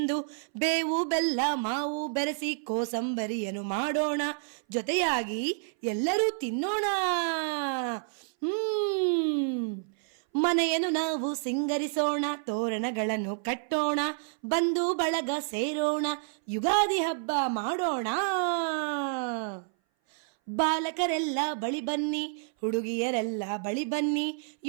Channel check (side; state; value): left; silent; 58 dB below the other